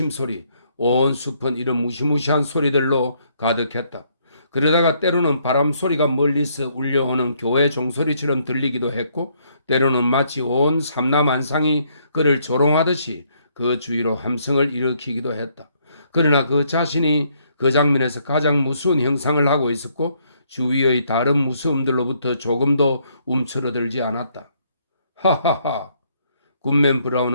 온 숲은 이런 무시무시한 소리들로 가득했다. 그러다가 때로는 바람 소리가 멀리서 울려오는 교회 종소리처럼 들리기도 했고 때로는 마치 온 삼라만상이 그를 조롱하듯이 그 주위로 함성을 일으키기도 했다. 그러나 그 자신이 그 장면에서 가장 무서운 형상을 하고 있었고 주위의 다른 무서움들로부터 조금도 움츠러들지 않았다. 하하하! 굿맨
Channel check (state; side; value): inverted; both; correlation -0.70